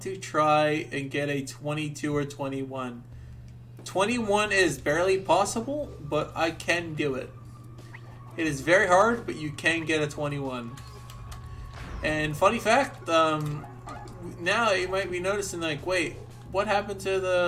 to try and get a 22 or 21. 21 is barely possible, but I can do it. It is very hard, but you can get a 21. And funny fact, now you might be noticing, like, wait, what happened to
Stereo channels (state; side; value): identical; both; correlation 1.00